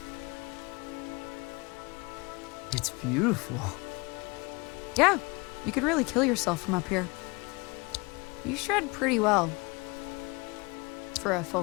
It's beautiful. Yeah, you could really kill yourself from up here. You shred pretty well. For a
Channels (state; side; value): quieter; right; 26.7 dB